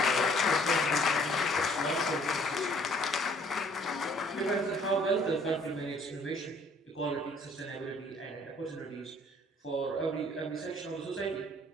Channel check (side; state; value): both; normal; correlation 0.58